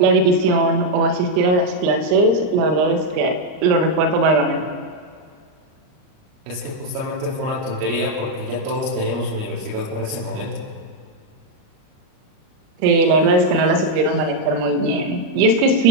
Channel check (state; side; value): late; left; 38 ms